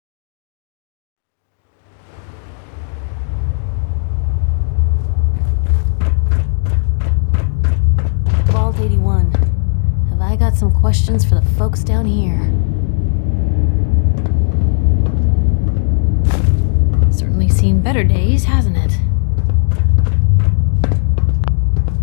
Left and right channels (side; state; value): right; silent; digital silence